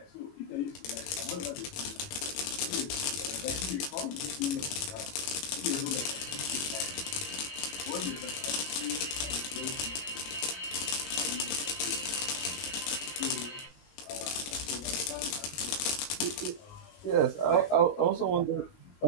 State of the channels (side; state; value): right; late; 21 ms